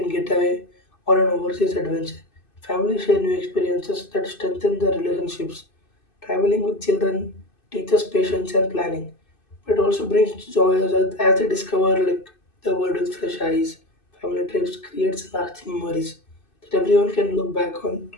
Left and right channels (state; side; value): late; right; 2.6 ms